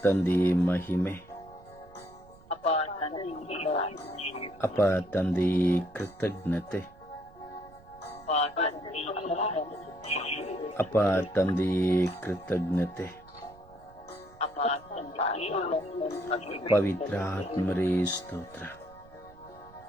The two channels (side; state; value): right; noise; rumble, 24 dB below the sound